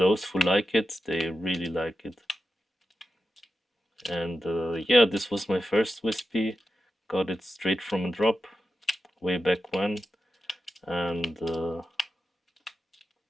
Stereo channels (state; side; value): normal; both; correlation 0.90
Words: who like it, they really like it. And yeah, this was my first Wispy. Got it straight from a drop way back when. And